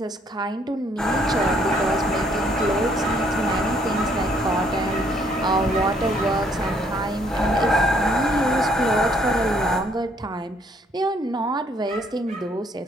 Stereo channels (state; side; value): normal; both; correlation 0.66